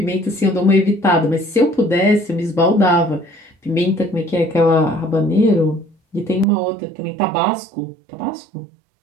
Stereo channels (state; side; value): drops out; left; at 6.5 s